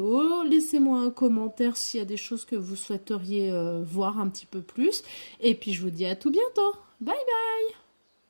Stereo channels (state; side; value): inverted; both; correlation -1.00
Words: Laissez-moi un commentaire s'il y a des choses que vous souhaiteriez voir un petit peu plus. Et puis je vous dis à tout bientôt. Bye bye.